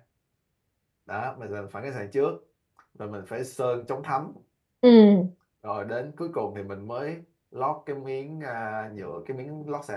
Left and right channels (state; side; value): identical; both; correlation 1.00